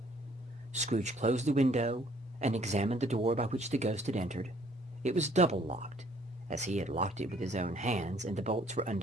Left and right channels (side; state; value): both; normal; correlation 0.61